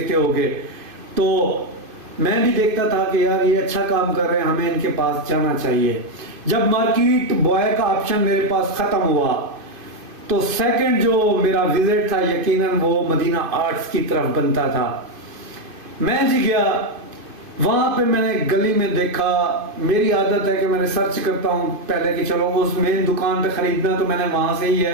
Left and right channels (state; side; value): late; left; 2.5 ms